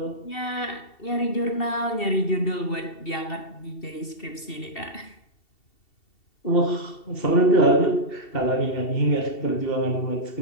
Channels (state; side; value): late; right; 2.7 ms